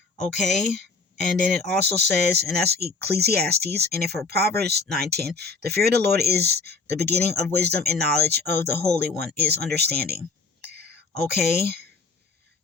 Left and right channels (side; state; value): right; quieter; 4.4 dB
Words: Okay? And then it also says, and that's Ecclesiastes, and for Proverbs 9:10, the fear of the Lord is the beginning of wisdom, and knowledge of the Holy One is understanding. Okay,